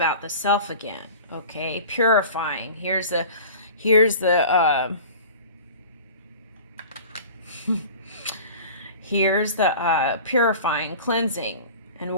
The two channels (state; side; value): inverted; both; correlation -0.40